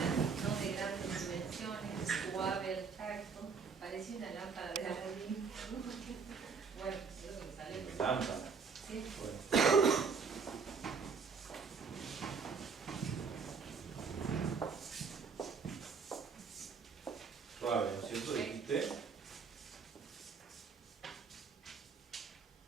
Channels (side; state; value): left; quieter; 5.4 dB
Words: no de grandes dimensiones, suave al tacto, parece una lámpara de Aladín. Bueno, eso es lo que sale. Lámpara. Sí. Bueno. Suave, ¿no es cierto? Dijiste.